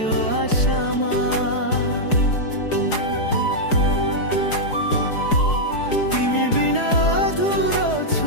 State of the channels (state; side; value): late; right; 4.8 ms